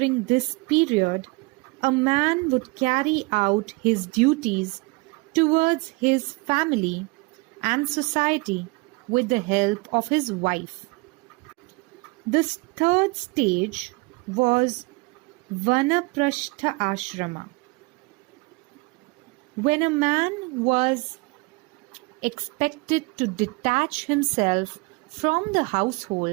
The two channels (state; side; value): quieter; left; 27.2 dB